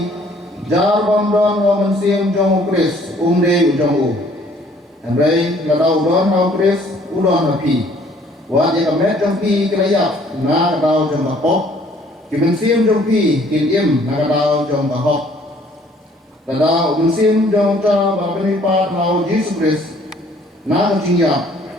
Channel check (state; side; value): normal; both; correlation 0.59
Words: jar bandon ho mensim jong ukris, umde ujong u. Henry ladau don ho ukris, udon hapi. Wat ya kamet jong pi kelayak, na kadau jong bakok. Kimensim jong pi, kinim na kadau jong bakok. Tada umensim jong ta bapenipat lau Yesus Kristus na kajingya